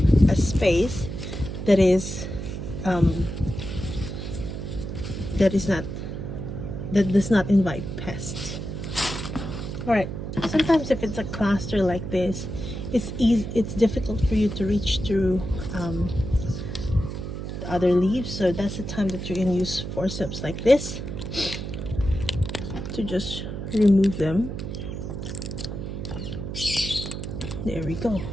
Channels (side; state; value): right; noise; hum, 6 dB below the sound